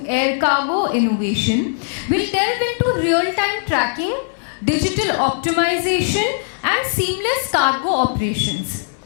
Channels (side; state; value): right; silent; 66 dB below the other